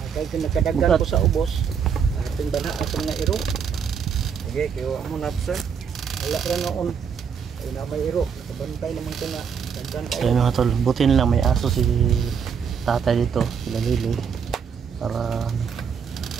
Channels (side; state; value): left; quieter; 6.9 dB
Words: Kay nakadagan ko sa ubos. Ating bana atong nga iro. Okay, kayo mo na sir. Wala ra noon. Ay na may iro. Nakabantay naman ko nga. Dagdan kayo. Ayun mga tol, buti nila may aso si tatay dito, sila Liloy. Para